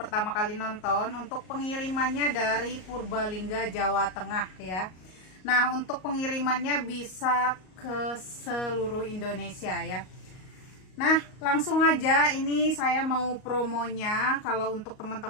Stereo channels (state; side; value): late; right; 38 ms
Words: kali nonton, untuk pengirimannya dari Purbalingga, Jawa Tengah ya. Nah, untuk pengirimannya bisa ke seluruh Indonesia ya. Nah, langsung aja ini saya mau promonya. Kalau untuk